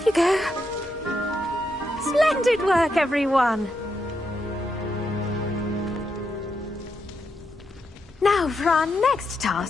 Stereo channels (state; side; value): normal; both; correlation 0.82